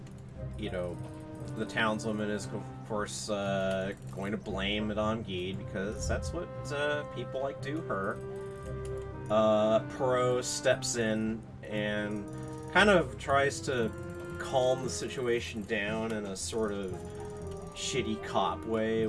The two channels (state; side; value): identical; both; correlation 1.00